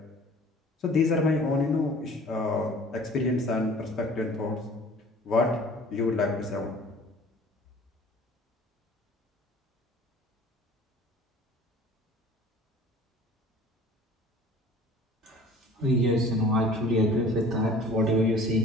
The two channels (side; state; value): both; normal; correlation 0.48